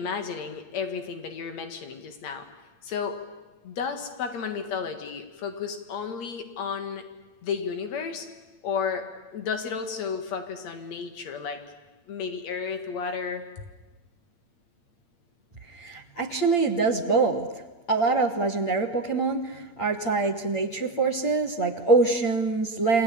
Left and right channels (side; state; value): right; late; 8.7 ms